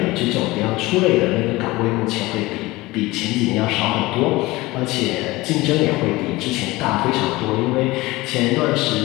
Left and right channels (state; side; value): quieter; right; 20.4 dB